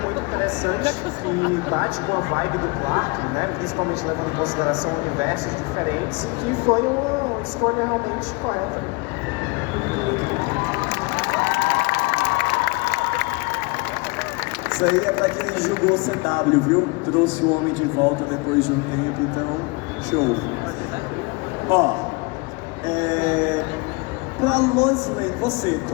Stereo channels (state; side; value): quieter; right; 27.9 dB